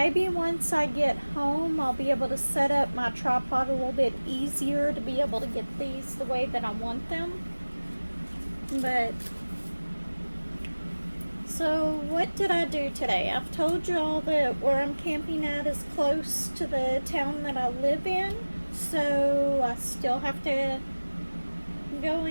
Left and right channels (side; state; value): both; inverted; correlation -1.00